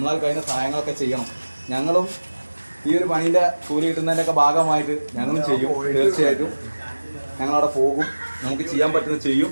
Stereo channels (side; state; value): both; inverted; correlation -1.00